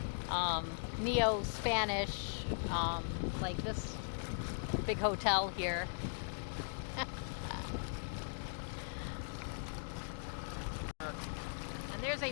neo-Spanish, like this big hotel here. And there's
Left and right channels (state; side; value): silent; right; digital silence